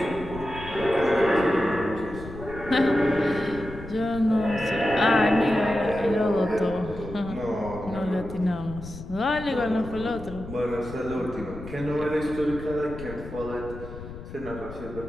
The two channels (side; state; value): left; noise; rumble, 12 dB below the sound